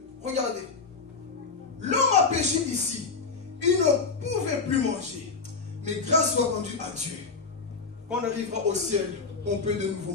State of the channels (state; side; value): quieter; right; 4.7 dB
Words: Regardez. L'homme a péché ici. Il ne pouvait plus manger. Mais grâce soit rendue à Dieu. Quand on arrivera au ciel, on peut de nouveau